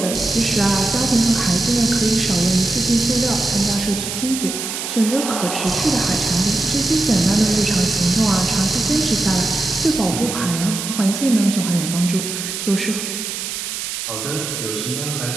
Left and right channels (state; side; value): noise; right; hiss, 5 dB below the sound